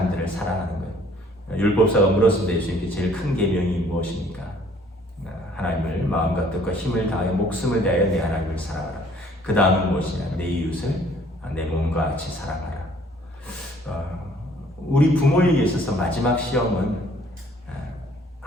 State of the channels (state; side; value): normal; both; correlation 0.58